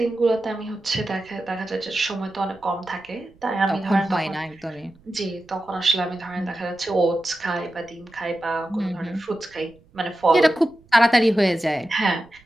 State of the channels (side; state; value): right; noise; rumble, 29 dB below the sound